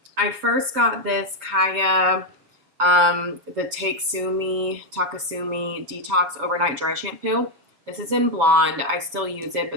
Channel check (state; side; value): late; left; 6.9 ms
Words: I first got this Kaya, the Takesumi Detox Overnight Dry Shampoo. This is in blonde. I still use it, but